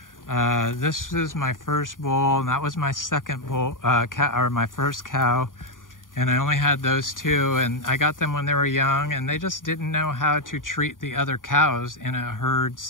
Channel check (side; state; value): right; late; 0.89 ms